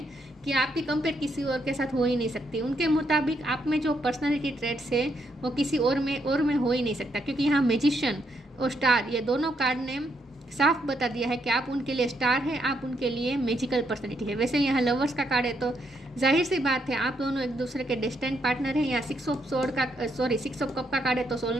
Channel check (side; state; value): both; normal; correlation 0.76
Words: कि आपकी कंपेयर किसी और के साथ हो ही नहीं सकती। उनके मुताबिक आप में जो पर्सनालिटी ट्रेट्स है वो किसी और में हो ही नहीं सकता, क्योंकि यहाँ मैजिशियन और स्टार ये दोनों कार्ड ने साफ बता दिया है कि आप उनके लिए स्टार है, आप उनके लिए मैजिकल पर्सनैलिटी है। वैसे यहाँ लवर्स का कार्ड है तो जाहिर सी बात है आप दोनों एक दूसरे के डिस्टेंट पार्टनर हैं। यहाँ 6 ऑफ कप का कार्ड है तो